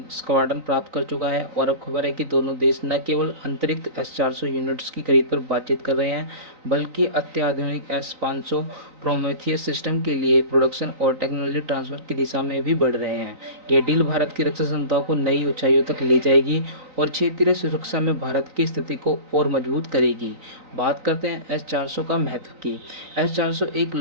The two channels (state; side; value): late; left; 3.9 ms